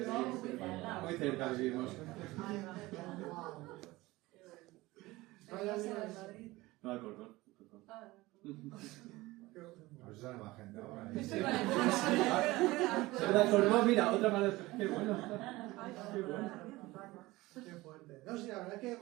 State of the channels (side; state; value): left; quieter; 19.9 dB